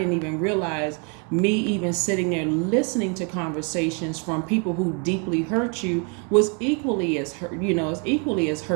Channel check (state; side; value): quieter; left; 36.8 dB